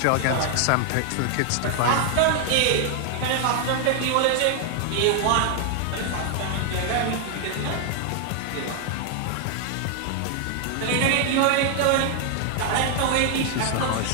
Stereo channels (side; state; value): both; different; correlation 0.00